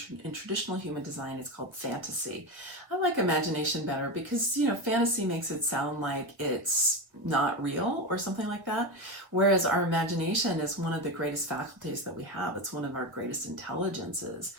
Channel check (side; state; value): left; late; 1.8 ms